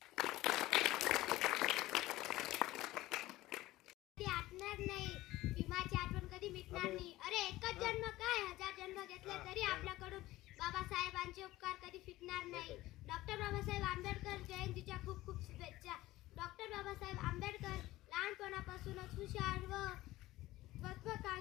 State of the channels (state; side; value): quieter; right; 17.2 dB